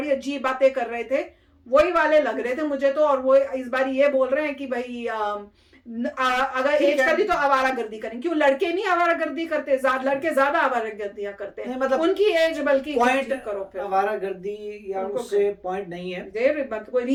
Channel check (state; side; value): identical; both; correlation 1.00